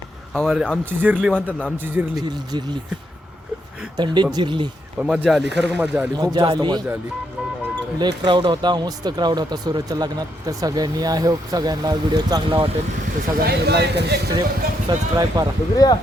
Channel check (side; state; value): both; normal; correlation 0.78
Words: हमारे. आमची जिरली म्हणतात ना, आमची जिरली थंडीत जिरली. पण मजा आली, खरंच मजा आली, खूप जास्त मजा आली. लय क्राऊड होता, मस्त क्राऊड होता सूरजच्या लग्नात. तर सगळ्यांनी आय होप सगळ्यांना व्हिडिओ चांगला वाटेल. तर सगळ्यांनी लाईक आणि सबस्क्राईब करा.